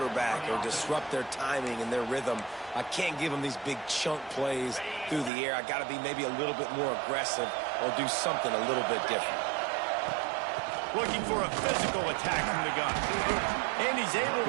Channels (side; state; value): left; drops out; at 5.3 s